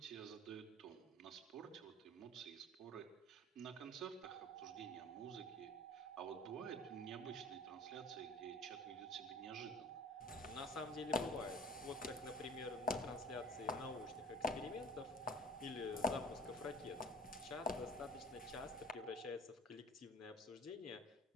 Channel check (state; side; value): normal; both; correlation 0.45